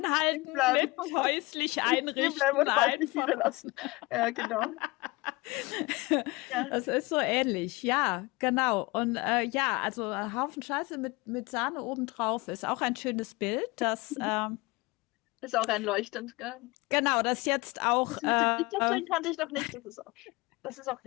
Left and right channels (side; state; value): right; quieter; 23.6 dB